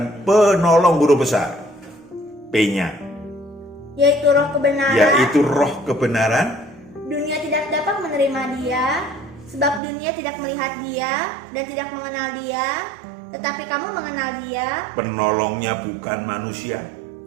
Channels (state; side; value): drops out; left; at 9.8 s